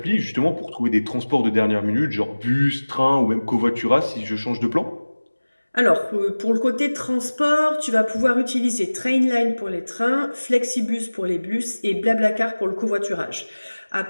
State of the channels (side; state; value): both; inverted; correlation -1.00